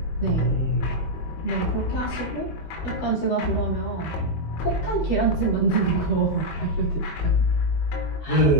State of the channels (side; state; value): right; late; 19 ms